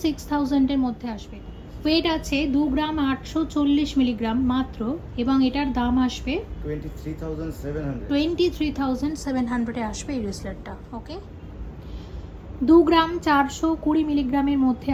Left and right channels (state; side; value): identical; both; correlation 1.00